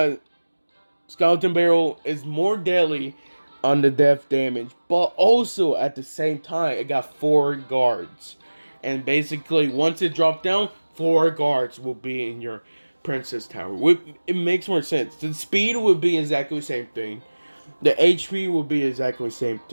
skeleton barrel is more deadly on the death damage, but also at the same time it got 4 guards, and basically once it dropped down, 4 guards will be in your princess tower. It makes more sense. The speed would be exactly the same thing, the HP would be exactly the same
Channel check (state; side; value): inverted; both; correlation -1.00